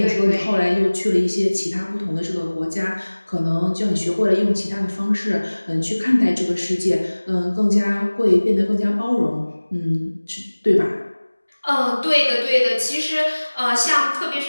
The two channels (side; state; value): both; inverted; correlation -1.00